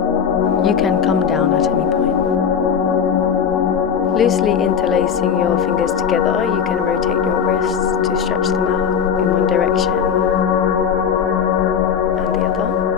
You can come down at any point. Loosely interlacing your fingers together, you can rotate your wrists to stretch them out in one direction and the other.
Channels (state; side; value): quieter; right; 7.4 dB